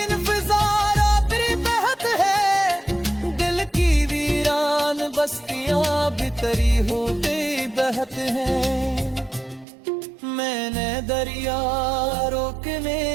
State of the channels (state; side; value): drops out; left; at 9.7 s